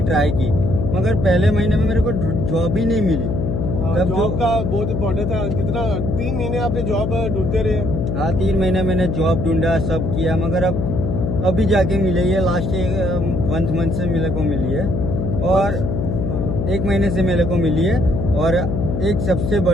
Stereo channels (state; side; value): noise; left; hum, 1 dB below the sound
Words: ट्राई की, मगर पहले महीने में मेरे को जॉब ही नहीं मिली। जॉब का बहुत इम्पोर्टेंट था। कितना 3 महीने आपने जॉब ढूंढते रहे? हाँ, 3 महीने मैंने जॉब ढूंढा, सब किया, मगर अब अभी जाके मिली है, लास्ट 1 मंथ से मेरे को मिली है और 1 महीने से मेरे को मिली है। और एक सबसे